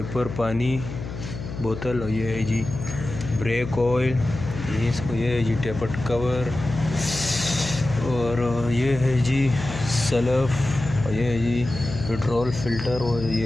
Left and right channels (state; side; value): noise; left; hum, 9 dB below the sound